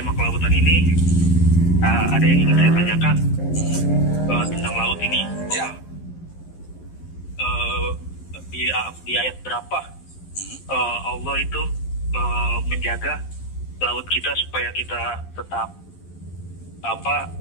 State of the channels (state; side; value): late; right; 11 ms